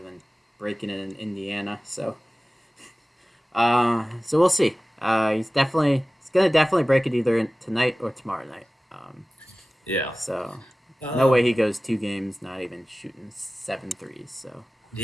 than breaking it in Indiana. So we'll see. He's gonna definitely break it either tonight or tomorrow night. yeah. So no way Um, he goes 2 games not even shooting 7 threes. So we'll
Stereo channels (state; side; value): normal; both; correlation 0.97